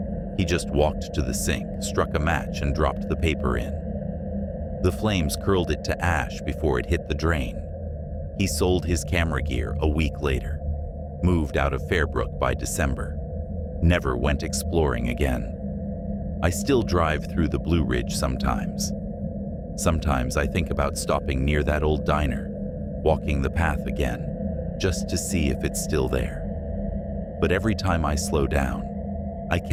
He just walked to the sink, struck a match, and dropped the paper in. The flames curled it to ash before it hit the drain. He sold his camera gear a week later, moved out of Fairbrook by December, never went exploring again. I still drive through the Blue Ridge sometimes. Sometimes I think about stopping near that old diner, walking the path again, just to see if it's still there. But every time I slow down, I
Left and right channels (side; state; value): both; identical; correlation 1.00